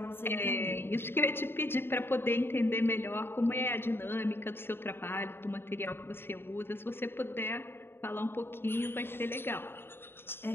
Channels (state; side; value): late; right; 0.11 ms